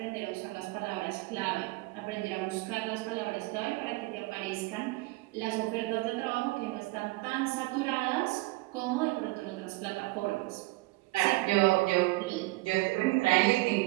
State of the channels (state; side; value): quieter; left; 22.3 dB